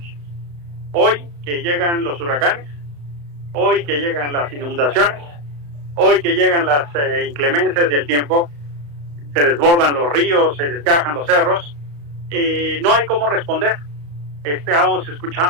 Hoy que llegan los huracanes, hoy que llegan las inundaciones, hoy que llegan las inclemencias del tiempo, se desbordan los ríos, se desgajan los cerros, no hay cómo responder. Estábamos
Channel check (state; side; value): late; left; 35 ms